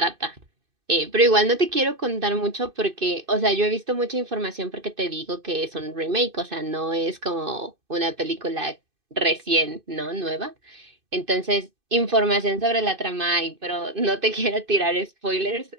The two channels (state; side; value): late; left; 2.5 ms